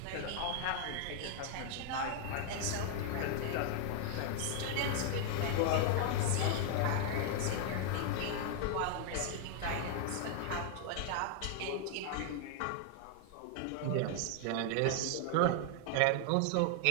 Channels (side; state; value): both; different; correlation 0.00